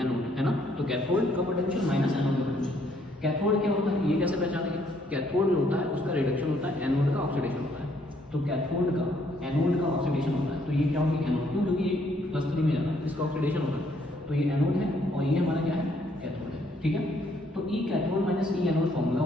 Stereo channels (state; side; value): normal; both; correlation 0.68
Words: एनोड, है ना। तो कैथोड का पोटेंशियल माइनस एनोड का पोटेंशियल। कैथोड क्या होता है ये कैसे पहचानेंगे, कैथोड जो होता है उसका रिडक्शन होता है, एनोड का ऑक्सीडेशन होता है। तो कैथोड का एनोड का ऑक्सीडेशन होता है, तो ये क्या होगी एनोड, क्यों, क्योंकि ये +3 में जाता है, इसका ऑक्सीडेशन होता है। तो ये एनोड है और ये हमारा क्या है, कैथोड है, ठीक है। तो ई कैथोड माइनस ई एनोड फॉर्मूला